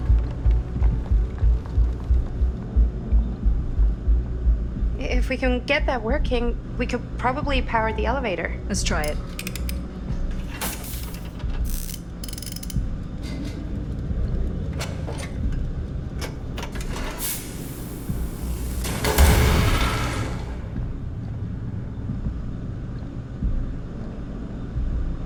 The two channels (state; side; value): identical; both; correlation 1.00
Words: If we can get that working, we could probably power the elevator. Let's try it.